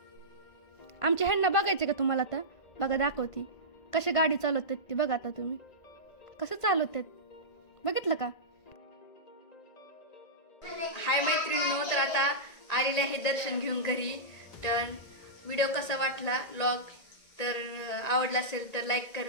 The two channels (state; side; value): late; right; 1.9 ms